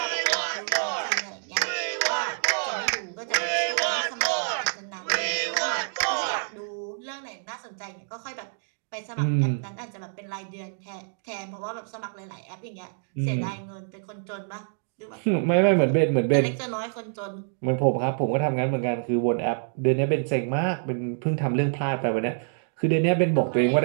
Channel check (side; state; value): left; silent; digital silence